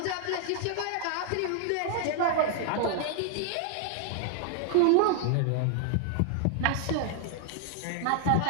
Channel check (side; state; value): both; different; correlation 0.00